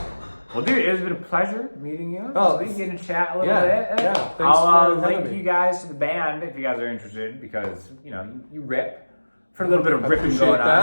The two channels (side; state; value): both; inverted; correlation -1.00